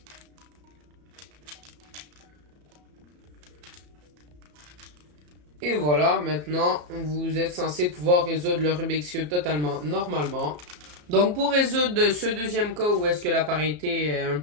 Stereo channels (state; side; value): late; left; 34 ms